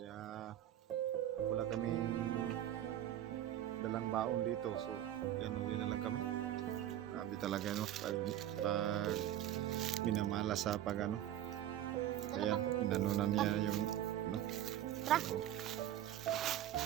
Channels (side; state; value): left; quieter; 12.1 dB